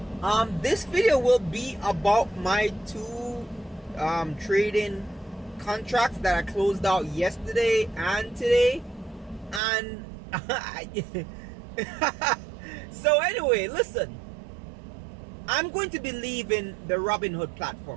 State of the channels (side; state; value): left; drops out; at 9.6 s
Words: This video will be about my two trading contracts that I closed out yesterday and today. And so anyway, listen, I'm going to be leaving the Robinhood